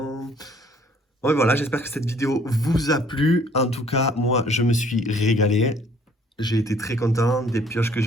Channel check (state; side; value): normal; both; correlation 0.59